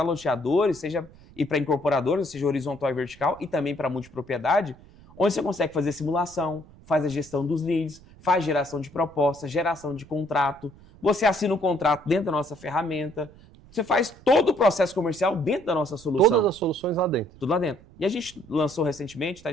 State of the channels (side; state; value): right; noise; rumble, 23 dB below the sound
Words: loteadores, e para incorporadores, seja horizontal e vertical, e também para multipropriedade, onde você consegue fazer simulação, faz a gestão dos leads, faz geração de propostas, geração de contrato, você assina um contrato dentro da nossa ferramenta, você faz todo o processo comercial dentro da nossa solução. Todas as soluções lá dentro. Tudo lá dentro. E a gente lançou recentemente, tá?